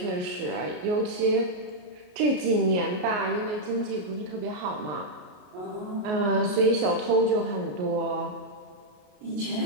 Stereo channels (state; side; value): late; left; 33 ms